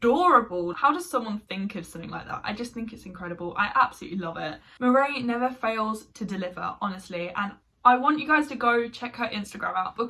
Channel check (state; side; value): identical; both; correlation 1.00